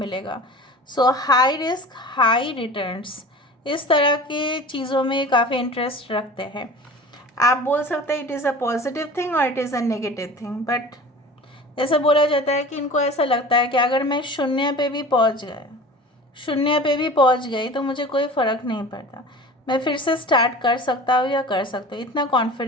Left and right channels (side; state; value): both; normal; correlation 0.39